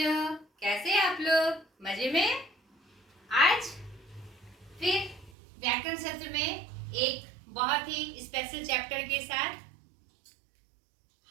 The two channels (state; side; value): drops out; left; at 5.3 s